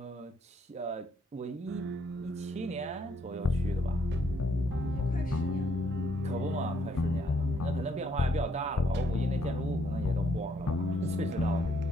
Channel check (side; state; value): both; normal; correlation 0.69